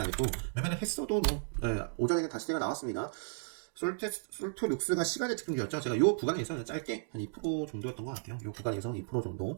했고 매매를 했어도 뭐 오전에는 다시 제가 나왔습니다. 솔토룩스가 시간의 특징이었죠. 제가 요 구간에서 짧게 한 2% 정도였던 것 같아요. 요 구간에서 2% 정도,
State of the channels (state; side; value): silent; left; digital silence